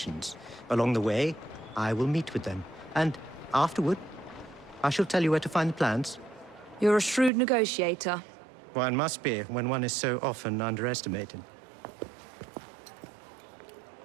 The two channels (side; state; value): left; drops out; at 7.3 s